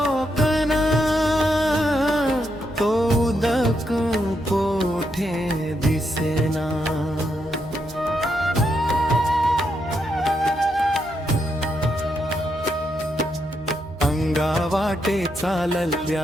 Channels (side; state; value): left; noise; hum, 21 dB below the sound